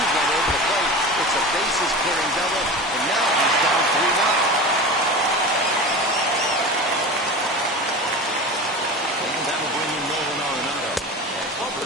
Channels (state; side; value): normal; both; correlation 0.30